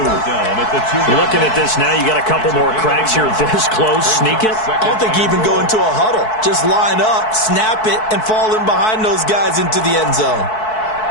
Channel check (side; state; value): right; late; 4.6 ms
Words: Looking at this now, you got a couple more cracks here. This close, sneak it. I don't think you even go into a huddle. Just line up, snap it, and fall in behind those guys into the end zone.